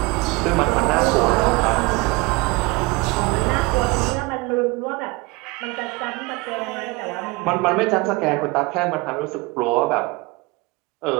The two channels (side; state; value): left; quieter; 24.6 dB